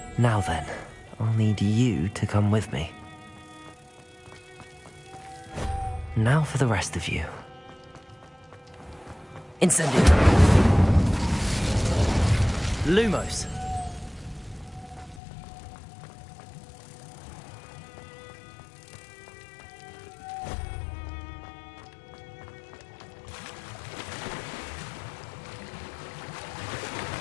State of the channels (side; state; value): right; drops out; at 15.2 s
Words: Now then, I'll need you to come with me. Now for the rest of you. Incendio! Lumos!